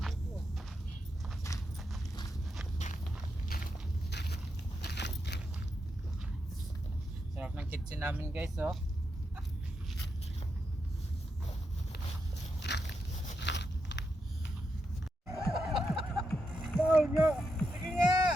Sarap ng kitchen namin guys oh. Bawal nga! Sige nga!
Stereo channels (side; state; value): both; normal; correlation 0.84